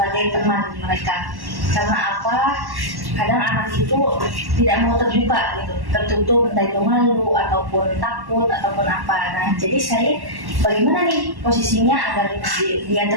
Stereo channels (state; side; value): late; left; 1.1 ms